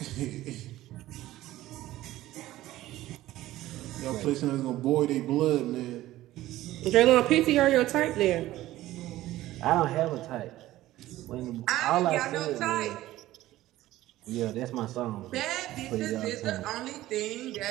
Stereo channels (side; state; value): left; quieter; 15.6 dB